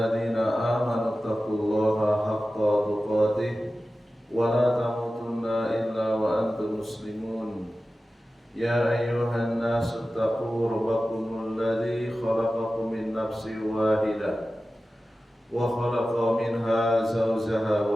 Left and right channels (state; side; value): normal; both; correlation 0.95